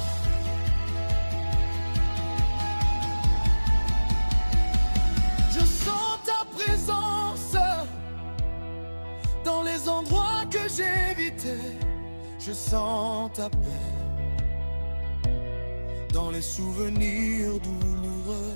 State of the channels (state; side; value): inverted; both; correlation -1.00